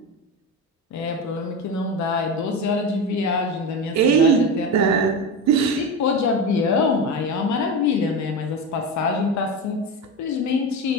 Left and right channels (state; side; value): normal; both; correlation 0.20